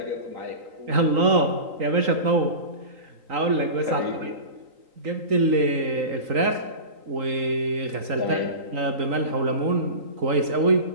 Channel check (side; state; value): left; late; 3.9 ms